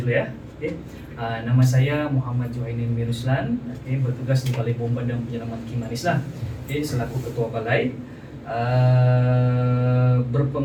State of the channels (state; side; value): identical; both; correlation 1.00